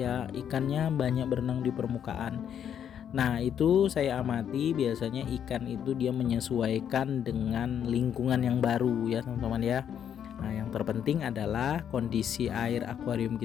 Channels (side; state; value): right; quieter; 8.9 dB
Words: ikannya banyak berenang di permukaan. Nah, itu saya amati biasanya ikan itu dia menyesuaikan dengan lingkungan yang baru ya teman-teman ya. Nah, yang terpenting adalah kondisi air akuarium